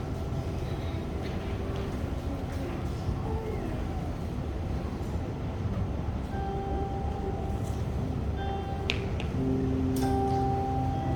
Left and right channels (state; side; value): identical; both; correlation 1.00